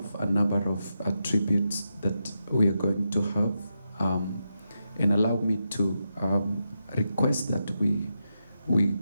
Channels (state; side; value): inverted; both; correlation -0.86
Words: a number of tributes that we are going to have. And allow me to request that we're